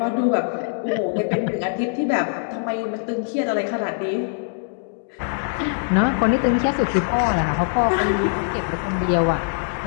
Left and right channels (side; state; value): right; silent; digital silence